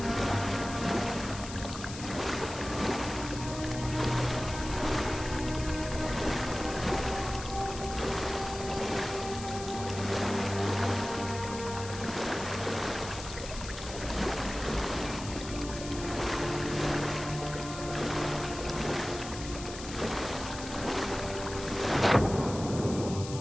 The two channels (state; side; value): noise; left; hiss, 11 dB below the sound